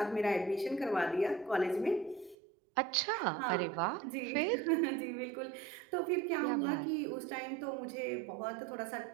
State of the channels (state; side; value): drops out; left; at 2.4 s